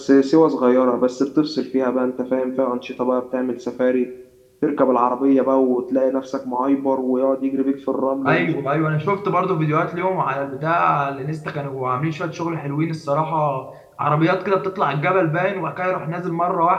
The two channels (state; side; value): identical; both; correlation 1.00